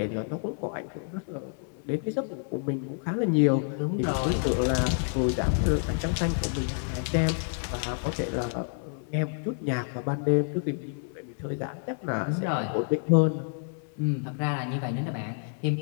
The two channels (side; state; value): right; silent; 59 dB below the other